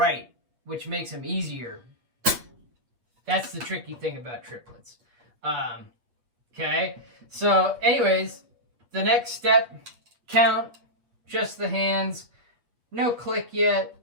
which makes them easier. That's the tricky thing about triplets. Okay, so anyways, the next step, count just the hands, no click yet,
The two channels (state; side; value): late; left; 8.3 ms